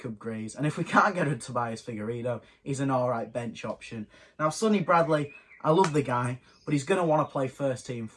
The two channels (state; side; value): identical; both; correlation 1.00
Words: Grieves. And if we can't get a Tobias Figueiredo, he's an all-right bench option. Now, Sonny Bradley, I love the guy, but he's going to want to play first-team